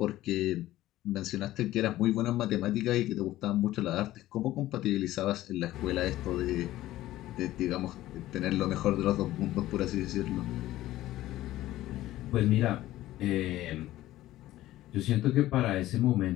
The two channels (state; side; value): quieter; right; 15.3 dB